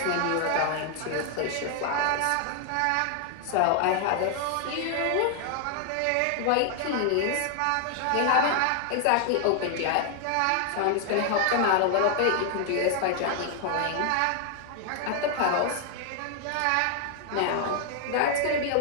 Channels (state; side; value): different; both; correlation 0.00